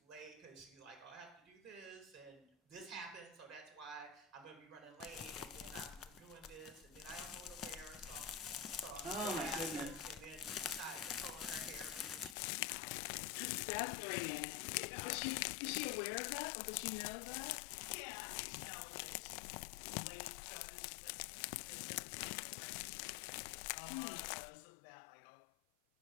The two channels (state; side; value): drops out; right; at 12.4 s